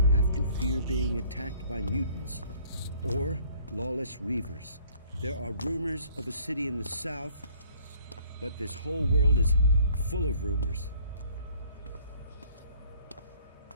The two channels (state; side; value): inverted; both; correlation -0.58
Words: have to fear being attacked by mutants or lawless reavers. There are rumors of a city in the south, but this whole world is full of rumors.